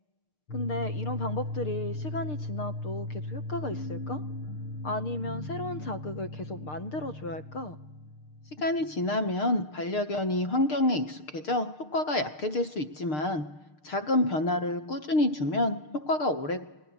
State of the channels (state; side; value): late; right; 6.6 ms